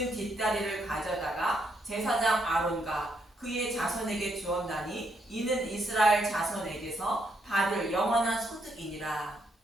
뒷다리를 가져다가 제사장 아론과 그의 자손에게 주었나니 이는 이스라엘 자손에게서 받을 영원한 소득이니라.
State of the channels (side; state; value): both; normal; correlation 0.76